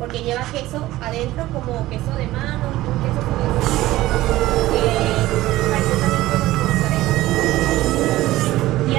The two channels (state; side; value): quieter; left; 16.5 dB